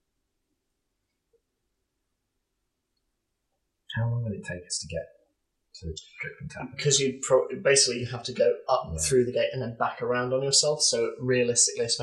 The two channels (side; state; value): both; identical; correlation 1.00